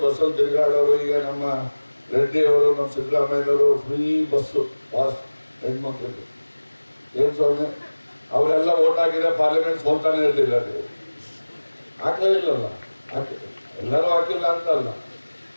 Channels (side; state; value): both; inverted; correlation -1.00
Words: ಬಸ್ಸಲ್ಲಿ ತಿರುಗಾಡೋರು, ಈಗ ನಮ್ಮ ರೆಡ್ಡಿಯವರು, ನಮ್ಮ ಸಿದ್ದರಾಮಯ್ಯನವರು ಫ್ರೀ ಬಸ್ಸು ಪಾಸ್ ಹೆಣ್ಮಕ್ಳಿಗೆ ಏನು ಸ್ವಾಮಿ, ಅವರೆಲ್ಲ ಓಟ್ ಹಾಕಿದ್ರೆ ಪಾರ್ಲಿಮೆಂಟ್ ಸೋಲ್ತಾನೆ ಇರಲಿಲ್ಲ. ನೀವು ಹಾಕಲೇ ಇಲ್ಲಲ್ಲ, ಎಲ್ಲರೂ ಹಾಕಿಲ್ಲ ಅಂತಲ್ಲ.